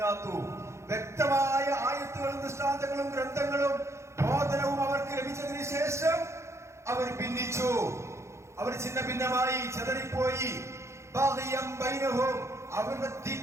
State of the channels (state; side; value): late; left; 0.14 ms